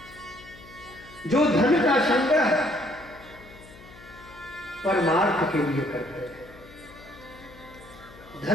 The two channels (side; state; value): left; noise; hum, 20 dB below the sound